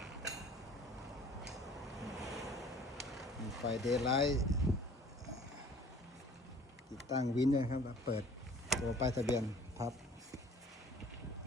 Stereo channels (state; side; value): normal; both; correlation 0.50